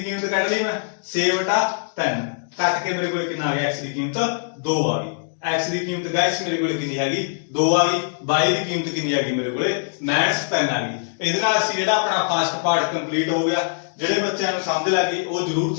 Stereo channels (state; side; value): silent; right; digital silence